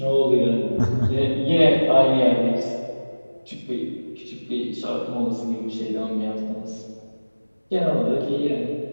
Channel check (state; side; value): inverted; both; correlation -1.00